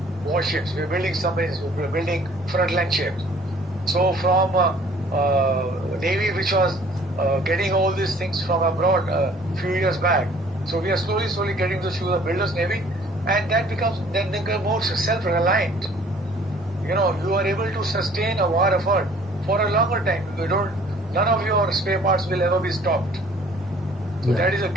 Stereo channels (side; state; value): both; normal; correlation 0.55